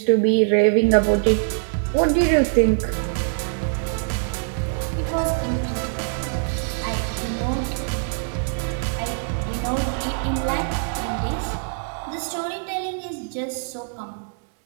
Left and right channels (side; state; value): left; silent; digital silence